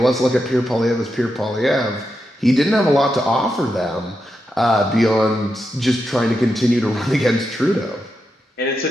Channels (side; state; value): both; normal; correlation 0.86